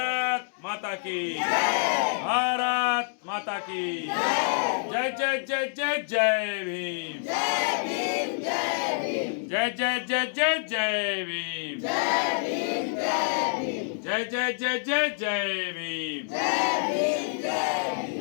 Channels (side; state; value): right; silent; digital silence